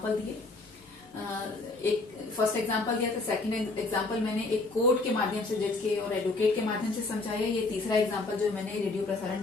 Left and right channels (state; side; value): quieter; right; 3.3 dB